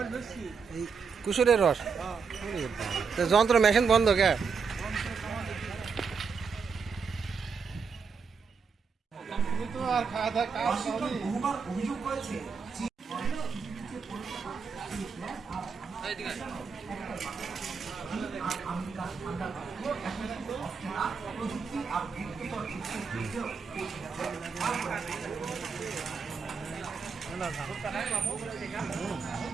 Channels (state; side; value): quieter; left; 5.5 dB